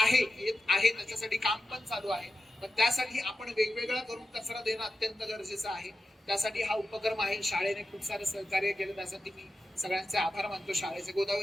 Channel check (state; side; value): normal; both; correlation 0.92